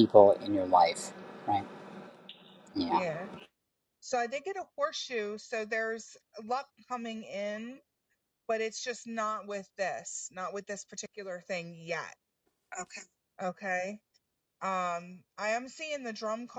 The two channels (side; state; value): both; identical; correlation 1.00